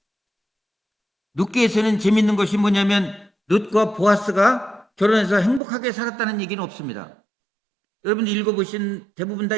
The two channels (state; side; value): drops out; left; at 5.6 s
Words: 룻기에서는 재밌는 것이 뭐냐면, 룻과 보아스가 결혼해서 행복하게 살았다는 얘기는 없습니다. 여러분들 대부분 다